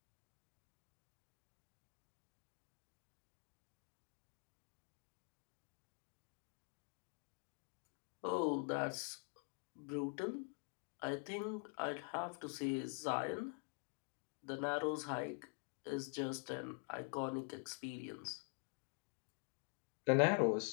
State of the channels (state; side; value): quieter; right; 36.7 dB